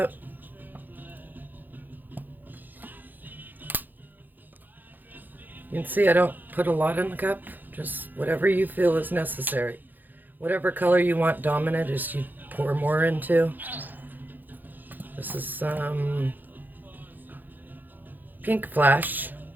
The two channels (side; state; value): left; late; 0.086 ms